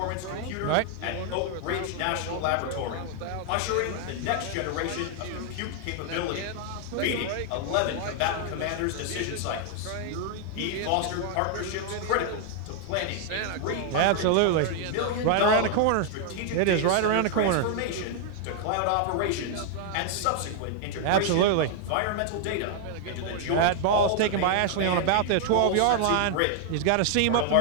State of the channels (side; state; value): both; different; correlation 0.00